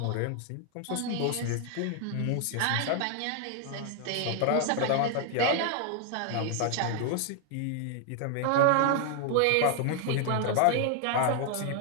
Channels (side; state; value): both; different; correlation 0.00